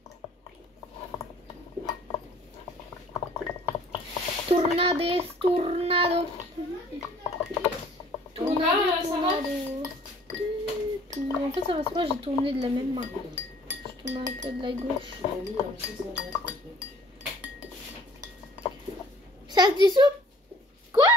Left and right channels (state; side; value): normal; both; correlation 0.54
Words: Tornades, tornado. Donc là, ça va? En fait, ça va pas, j'ai tourné de la même main. Je tourne un peu de la gauche. Ça se dissout? Quoi?